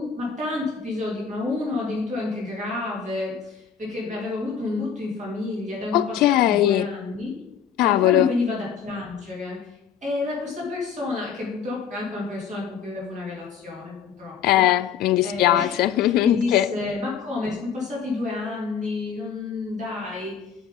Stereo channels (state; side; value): quieter; right; 7.6 dB